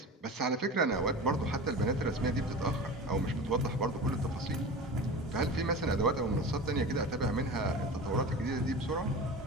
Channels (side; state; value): both; normal; correlation 0.32